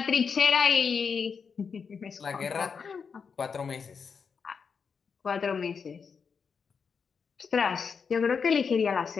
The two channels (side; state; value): right; quieter; 5.9 dB